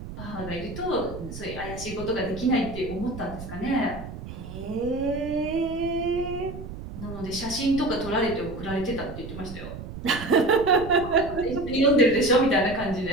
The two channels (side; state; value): right; noise; rumble, 11 dB below the sound